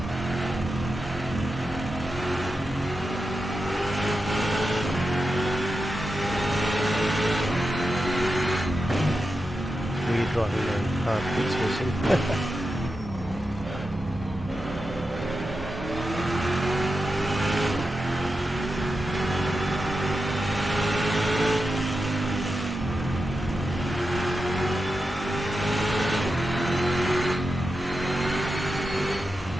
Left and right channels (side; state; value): both; normal; correlation 0.90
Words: Weird driving a car keeps missing.